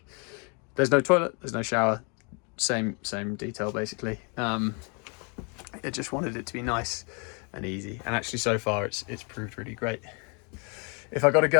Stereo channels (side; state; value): right; quieter; 34.6 dB